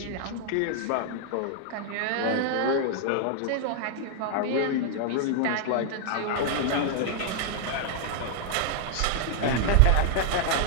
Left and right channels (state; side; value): different; both; correlation -0.01